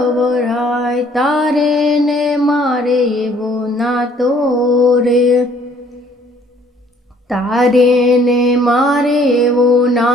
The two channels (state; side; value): normal; both; correlation 0.60